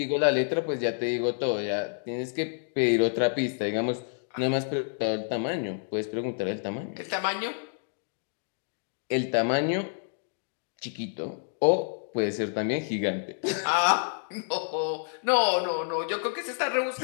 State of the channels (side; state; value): right; silent; digital silence